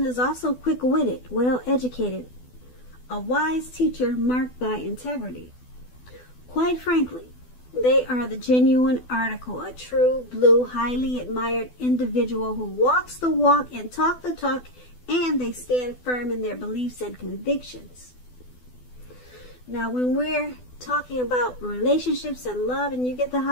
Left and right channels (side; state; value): right; late; 12 ms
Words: is also quick-witted, well-educated, a wise teacher marked by integrity. Quite frankly, they are the genuine article, a true blue, highly admired individual who walks the walk and talk the talk, and they stand firm in their beliefs and convictions. Now, when we're talking about relationships and love and you get the